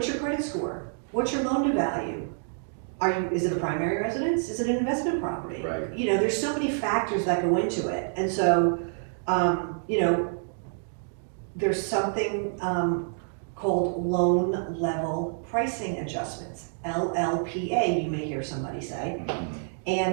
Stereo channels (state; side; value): silent; left; digital silence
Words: your credit score? What's your loan to value? Is it a primary residence? Is it an investment property? You know, there's so many factors that go into it. And so, you know, there's something called loan level pricing adjustments, LLPA, you may hear somebody say.